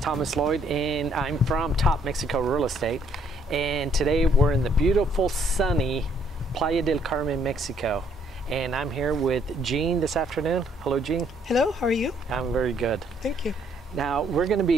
Thomas Lloyd, and I'm from Top Mexico Real Estate. And today we're in the beautiful, sunny Playa del Carmen, Mexico. And I'm here with Jean this afternoon. Hello, Jean. Hello, how are you? I'm very good. Thank you. Now, we're going to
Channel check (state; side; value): normal; both; correlation 0.66